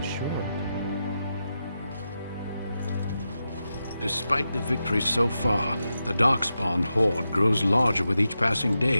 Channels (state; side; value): inverted; both; correlation -0.89